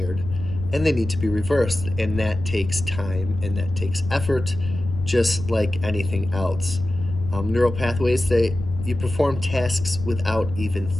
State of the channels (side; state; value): left; noise; rumble, 9 dB below the sound